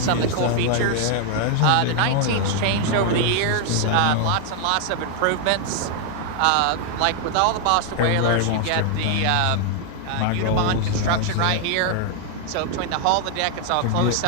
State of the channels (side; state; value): both; different; correlation 0.00